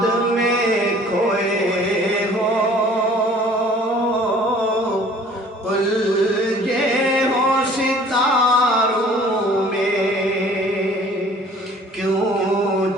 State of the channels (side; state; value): both; normal; correlation 0.52